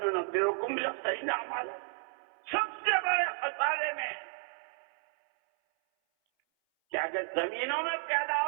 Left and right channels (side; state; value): left; silent; 56 dB below the other